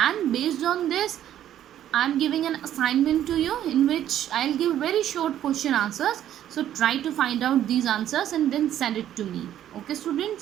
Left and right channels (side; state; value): left; quieter; 11.3 dB